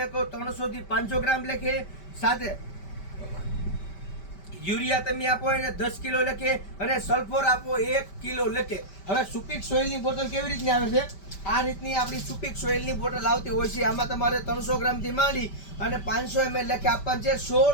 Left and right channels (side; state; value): right; late; 5.1 ms